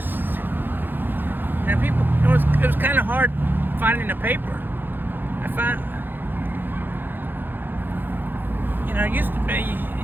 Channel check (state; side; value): late; left; 0.094 ms